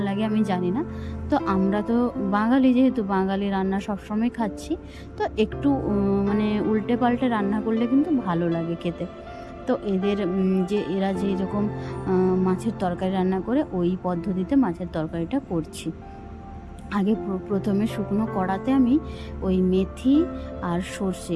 লাগে আমি জানি না। তো আমরা তো বাঙালি, যেহেতু বাঙালি রান্না সবসময় খাচ্ছি, তো একটু মানে উল্টে পাল্টে রান্না করলে কিন্তু ভালো লাগে খেতে। তো এরা যেরকম মাছের তরকারি রান্না করে ওই পদ্ধতিতে মাছের তরকারিটা করছি। আগে প্রথমে শুকনো কড়াতে আমি ওই মেথি আর সর্ষে,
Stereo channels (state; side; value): identical; both; correlation 1.00